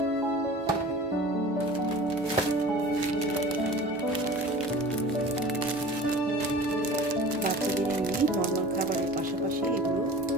বাচ্চাদের এমনি নর্মাল খাবারের পাশাপাশি এগুলো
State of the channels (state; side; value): normal; both; correlation 0.41